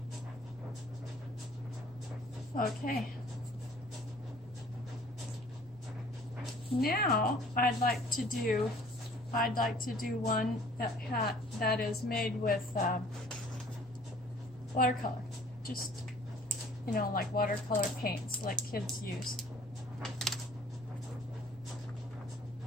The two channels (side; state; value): right; noise; rumble, 25 dB below the sound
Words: Okay. Now I'd like to do one that is made with watercolor. Just, you know, like watercolor paints like kids use.